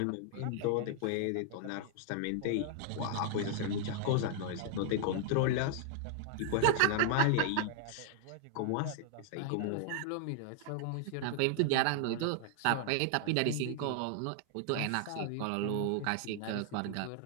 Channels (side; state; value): both; different; correlation 0.00